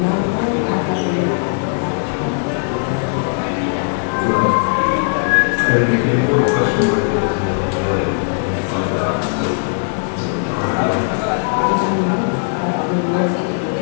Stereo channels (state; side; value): silent; right; 67 dB below the other